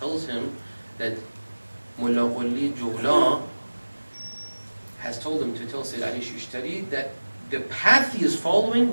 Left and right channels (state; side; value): inverted; both; correlation -1.00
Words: him that Mullah Qoliya Jawla has told him to tell Sayyid Ali Shushtari that the path he is